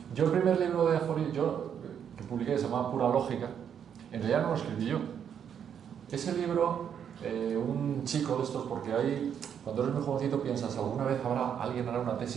Yo el primer libro de aforismo que publiqué se llamaba Pura Lógica. En realidad no lo escribí yo. Ese libro, un chico de estos, porque ahí, cuando eres muy jovencito piensas, alguna vez alguien hará una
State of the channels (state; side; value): quieter; left; 8.3 dB